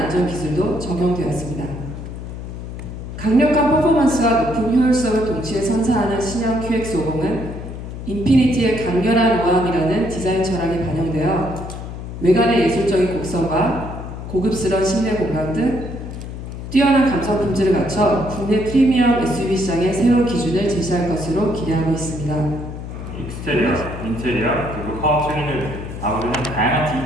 기술도 적용되었습니다. 강력한 퍼포먼스와 높은 효율성을 동시에 선사하는 신형 QX50은 인피니티의 강렬한 우아함이라는 디자인 철학이 반영되어 외관의 예술적인 곡선과 고급스러운 실내 공간 등 뛰어난 감성 품질을 갖춰 국내 프리미엄 SUV 시장의 새로운 기준을 제시할 것으로 기대하고 있습니다. 익스테리어, 인테리어, 그리고 파워트레인을 아우르는 다양한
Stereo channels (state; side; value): noise; left; hum, 9 dB below the sound